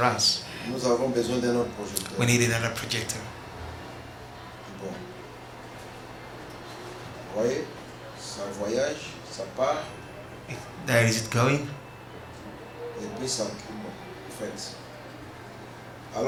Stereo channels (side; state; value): both; identical; correlation 1.00